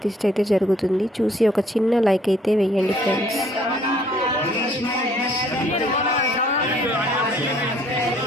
అయితే జరుగుతుంది. చూసి ఒక చిన్న లైక్ అయితే వేయండి ఫ్రెండ్స్.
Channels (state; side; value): normal; both; correlation 0.60